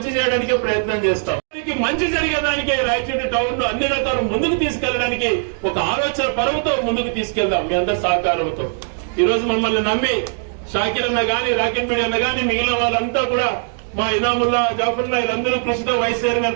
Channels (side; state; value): left; silent; digital silence